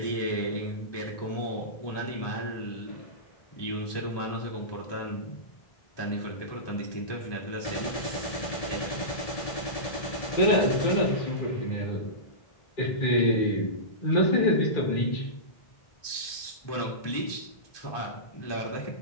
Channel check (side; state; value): right; late; 1.2 ms